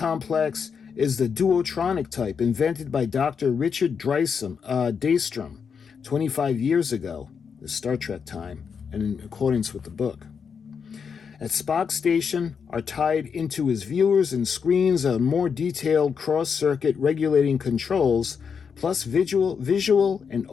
is the duotronic type invented by Dr. Richard Daystrom 25 years ago, the Star Trek time, and in accordance with the book. At Spock's station are tied into his viewers and screens are more detailed cross-circuit regulating controls, plus visual and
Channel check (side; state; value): right; quieter; 6.4 dB